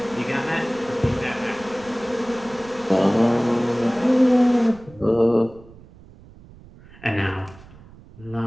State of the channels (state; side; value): noise; right; rumble, 22 dB below the sound